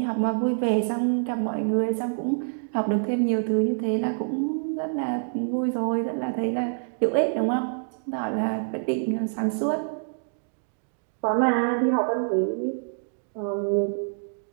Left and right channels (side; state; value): left; silent; digital silence